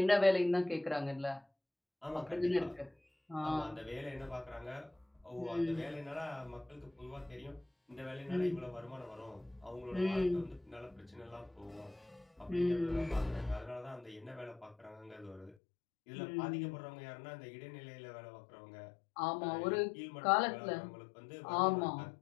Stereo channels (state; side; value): drops out; right; at 15.6 s